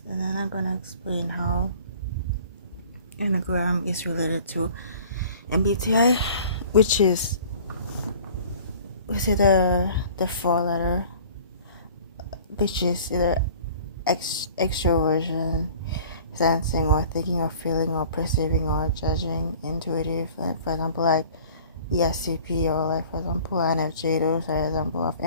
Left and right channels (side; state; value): both; inverted; correlation -0.47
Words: and then I'm gonna explain how Enneagram is related to MBTI, which is either the four letter, which is either extroversion, sensing or thinking or feeling or perceiving or judging, intuitive, like for example, like ESCP or like for example INFJ. Those are example of